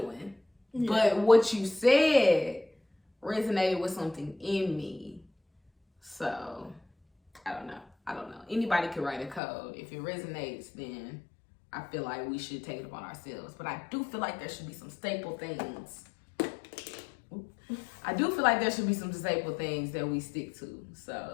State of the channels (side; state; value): right; drops out; at 9.4 s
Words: but what you said resonated with something in me. So I don't know. Anybody can write a code. If it resonates, then I feel like we should take it upon ourselves. But I do feel like there should be some staple things. That we stick to.